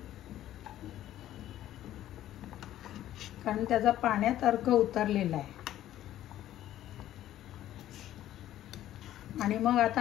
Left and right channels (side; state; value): right; quieter; 12.9 dB